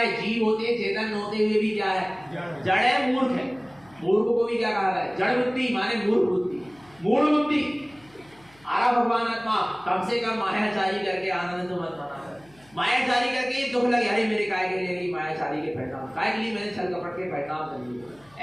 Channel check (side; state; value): left; noise; hum, 29 dB below the sound